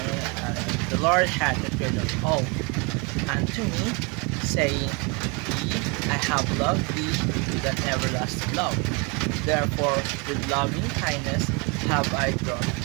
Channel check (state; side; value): quieter; left; 30.8 dB